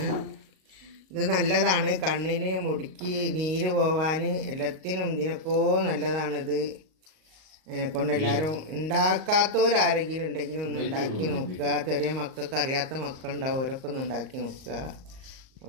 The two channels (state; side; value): late; left; 38 ms